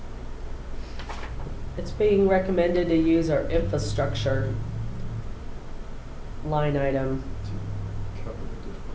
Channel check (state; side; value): identical; both; correlation 1.00